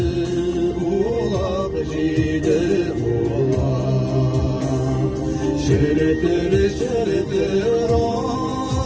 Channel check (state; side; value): identical; both; correlation 1.00